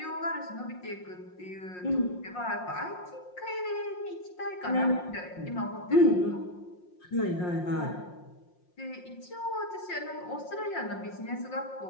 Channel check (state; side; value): late; right; 5.6 ms